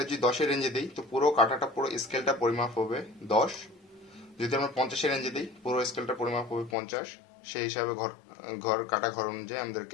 যদি 10 এর রেঞ্জে দিই, তো পুরো কাঁটাটা, পুরো স্কেলটা পরিমাপ হবে 10। যদি আমরা 50 এর রেঞ্জে দিই, পুরো স্কেলটা পরিমাপ হবে 50। সেই হিসাবে ঘর অনুযায়ী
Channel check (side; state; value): right; drops out; at 6.8 s